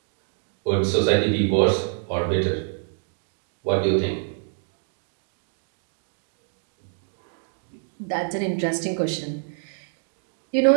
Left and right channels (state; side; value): silent; left; digital silence